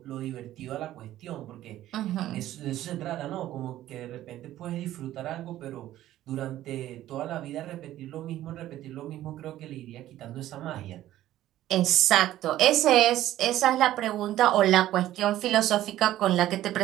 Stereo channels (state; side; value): quieter; left; 13.8 dB